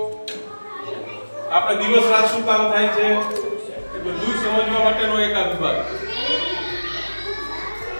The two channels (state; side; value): inverted; both; correlation -1.00